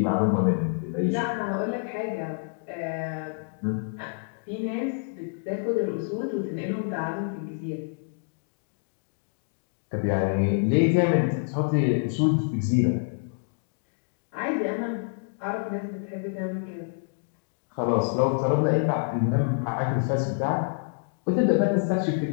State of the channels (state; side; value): silent; right; 60 dB below the other